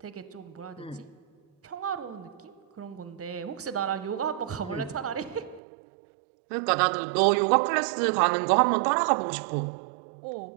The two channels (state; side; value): drops out; left; at 5.6 s